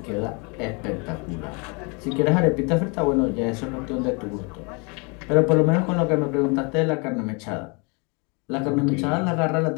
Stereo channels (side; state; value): right; quieter; 32.0 dB